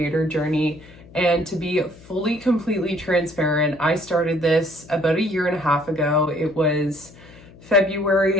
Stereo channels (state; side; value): noise; left; hum, 22 dB below the sound